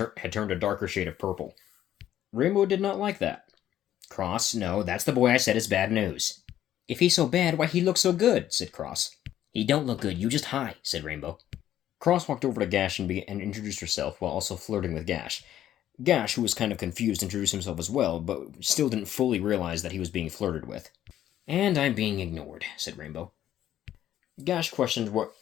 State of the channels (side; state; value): right; quieter; 11.8 dB